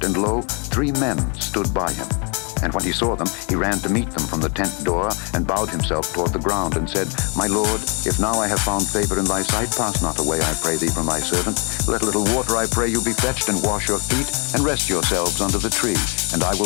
and lo, 3 men stood by him. And when he saw them, he ran to meet them from the tent door, and bowed himself toward the ground, and said, My Lord, if now I have found favor in thy sight, pass not away, I pray thee, from thy servant. Let a little water, I pray you, be fetched, and wash your feet, and rest yourselves under the tree. And I will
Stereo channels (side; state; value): right; quieter; 34.3 dB